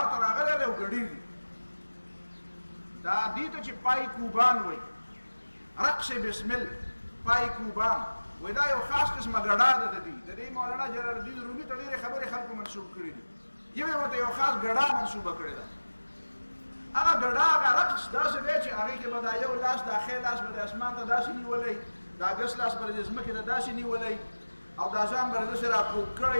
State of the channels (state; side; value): inverted; both; correlation -1.00